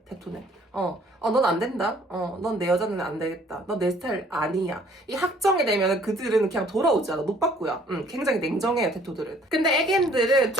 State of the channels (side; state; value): both; normal; correlation 0.58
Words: 테토는. 넌 안 된다. 넌 내 여자는 안 되겠다. 넌 내 스타일 아니야. 이 확정이 되면 그들은 그냥 돌아오지 않아. 노빠꾸야. 굉장히 냉정해요, 테토들은. 근데 애견들은